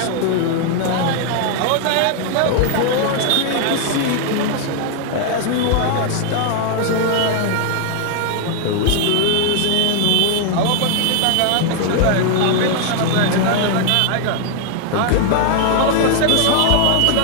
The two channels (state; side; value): different; both; correlation 0.00